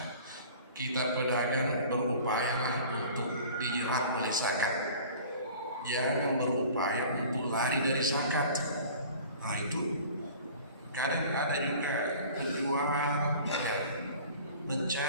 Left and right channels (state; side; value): inverted; both; correlation -0.44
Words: Kita pedagang berupaya untuk dijerat oleh zakat, jangan berupaya untuk lari dari zakat. Itu kadang ada juga penjual